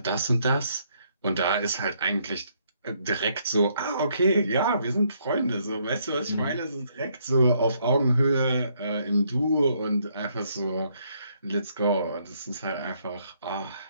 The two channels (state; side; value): inverted; both; correlation -0.71